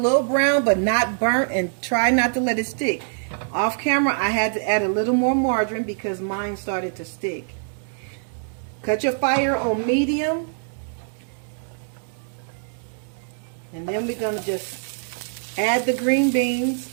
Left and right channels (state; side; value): silent; left; digital silence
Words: brown, but not burnt, and try not to let it stick. Off camera, I had to add a little more margarine because mine started to stick. Cut your fire on medium. And then we're going to just add the green beans.